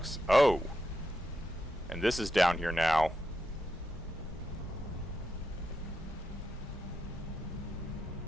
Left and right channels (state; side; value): normal; both; correlation 0.85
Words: Oh. And this is down here now.